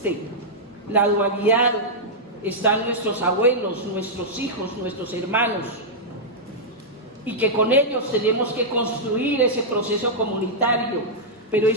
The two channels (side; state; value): both; normal; correlation -0.09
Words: la dualidad, están nuestros abuelos, nuestros hijos, nuestros hermanos, y que con ellos tenemos que construir ese proceso comunitario, pero